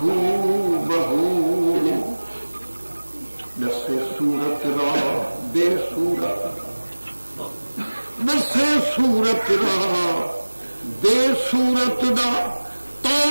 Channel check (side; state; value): both; inverted; correlation -1.00